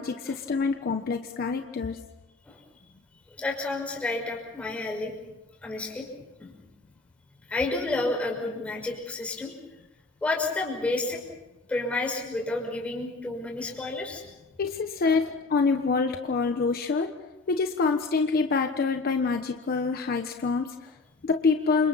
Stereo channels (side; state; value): right; quieter; 3.7 dB